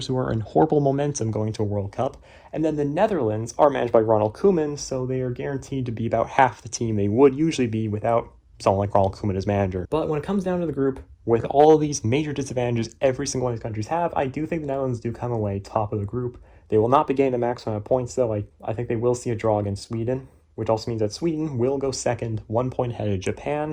who are in horrible momentum going to a World Cup. And then the Netherlands are managed by Ronald Koeman, so they are guaranteed to be about half the team they would usually be without someone like Ronald Koeman as manager. But when it comes down to the group, with all of these major disadvantages every single one of these countries have, I do think the Netherlands do come away top of the group. They will not be getting the maximum of points, though. I think they will see a draw against Sweden, which also means that Sweden will go second, 1 point ahead of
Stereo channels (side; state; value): both; identical; correlation 1.00